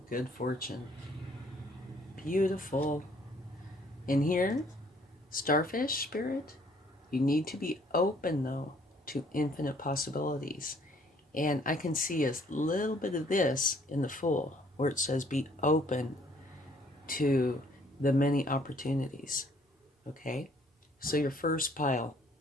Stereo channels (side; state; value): both; normal; correlation 0.62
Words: good fortune. Beautiful. In here, starfish spirit, you need to be open, though, to infinite possibilities. And I can see a little bit of this in the Fool, where it says be open to the many opportunities. Okay? So your first pile,